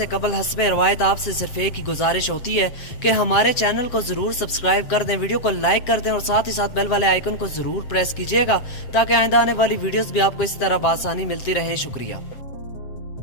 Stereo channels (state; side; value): late; right; 7.6 ms